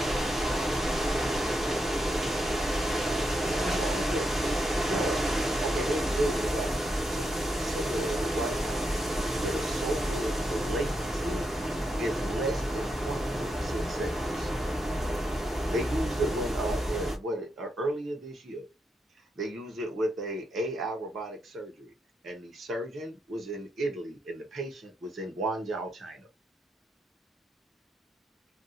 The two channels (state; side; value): normal; both; correlation 0.83